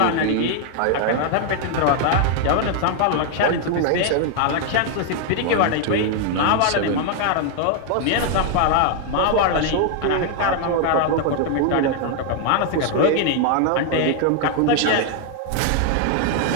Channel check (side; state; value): both; different; correlation 0.00